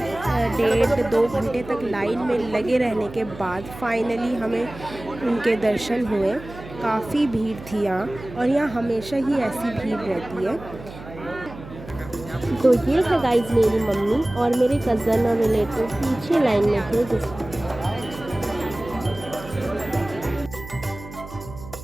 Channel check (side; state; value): right; noise; hum, 15 dB below the sound